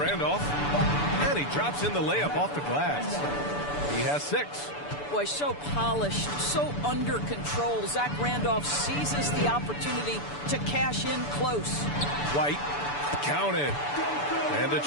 And he drops in the layup off the glass. He has 6. Boy, so polished, so under control. Zach Randolph seizes the opportunity to cash in close. White. Counted. And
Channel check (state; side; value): late; right; 6.9 ms